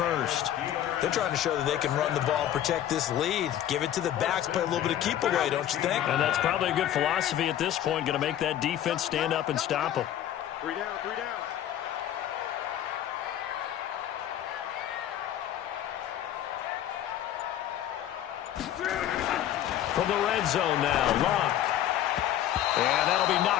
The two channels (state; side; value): quieter; right; 11.5 dB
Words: They're trying to show that they can run the ball, protect this lead. Give it to the backs, play a little bit of keep away, don't you think? And that's probably a good philosophy at this point. Going to make that defense stand up and stop them. 3 down. From the red zone now, Locke. And that'll be